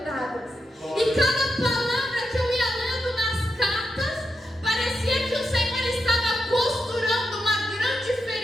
E cada palavra que eu ia lendo nas cartas, parecia que o Senhor estava costurando uma grande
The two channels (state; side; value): normal; both; correlation 0.86